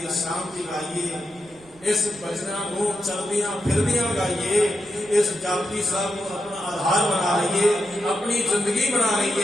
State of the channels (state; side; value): noise; right; rumble, 26 dB below the sound